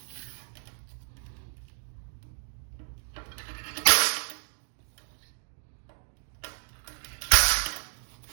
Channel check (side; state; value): left; silent; digital silence